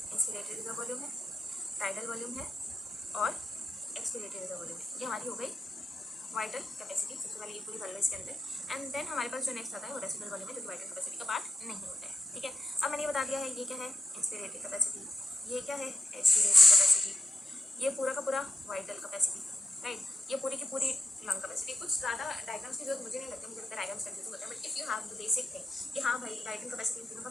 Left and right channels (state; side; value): normal; both; correlation 0.84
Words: रिजर्व वॉल्यूम है, टाइडल वॉल्यूम है और एक्सपिरेटरी रिजर्व वॉल्यूम है। ये हमारी हो गई वाइटल कैपेसिटी। सबसे पहले ये पूरी कर लो इसके अंदर, एंड देन हमारे पास जो नेक्स्ट आता है वो रेसिडुअल वॉल्यूम है जो कि वाइटल कैपेसिटी का पार्ट नहीं होता है। ठीक है, अब मैंने ये बता दिया है ये क्या है इंस्पिरेटरी कैपेसिटी, ये क्या है एक्सपिरेटरी कैपेसिटी, ये पूरा का पूरा वाइटल कैपेसिटी, राइट, ये पूरी की पूरी लंग कैपेसिटी। कुछ ज़्यादा डायग्राम्स की जरूरत मुझे नहीं लगती, मुझे लगता है डायग्राम्स कंफ्यूज होता है, but if you have the basic thing कि हाँ भाई वाइटल कैपेसिटी इन तीनों का